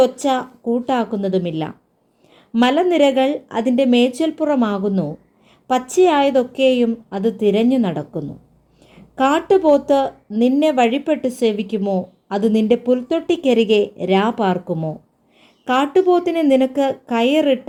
ഒച്ച കൂട്ടാക്കുന്നതുമില്ല. മലനിരകൾ അതിൻ്റെ മേച്ചൽപ്പുറമാകുന്നു, പച്ചയായതൊക്കെയും അത് തിരഞ്ഞു നടക്കുന്നു. കാട്ടുപോത്ത് നിന്നെ വഴിപ്പെട്ട് സേവിക്കുമോ? അത് നിന്റെ പുൽത്തൊട്ടിക്കരികെ രാ പാർക്കുമോ? കാട്ടുപോത്തിനെ നിനക്ക്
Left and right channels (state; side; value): identical; both; correlation 1.00